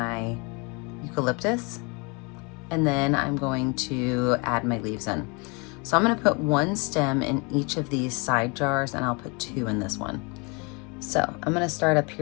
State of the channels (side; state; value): right; quieter; 30.6 dB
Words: eucalyptus, and then I'm going to add my leaves in. So I'm gonna put one stem in each of these side jars, and I'll put two in this one. So I'm gonna start up